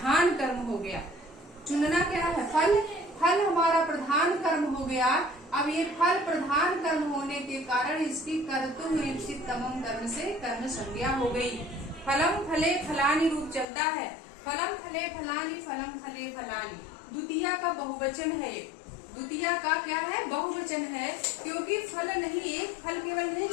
कर्म हो गया। चुनना क्या है? फल, फल हमारा प्रधान कर्म हो गया। अब ये फल प्रधान कर्म होने के कारण इसकी कर्तुः रीप्सित तमम कर्म से कर्म संज्ञा हो गई। फलम फले फलानी रूप चलता है, फलम फले फलानी, फलम फले फलानी। द्वितीय का बहुवचन है, द्वितीय का क्या है? बहुवचन है, क्योंकि फल नहीं, एक फल केवल नहीं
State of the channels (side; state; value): right; drops out; at 13.7 s